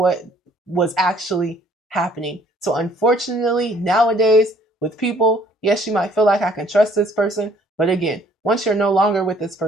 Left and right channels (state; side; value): normal; both; correlation 0.60